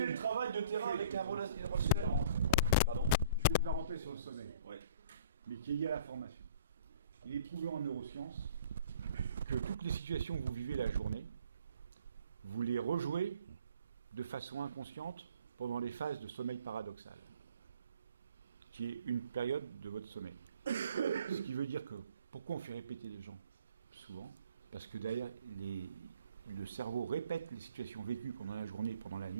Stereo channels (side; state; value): both; inverted; correlation -0.53